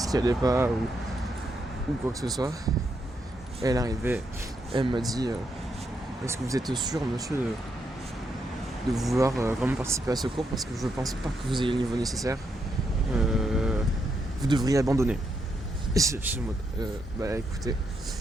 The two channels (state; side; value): normal; both; correlation 0.80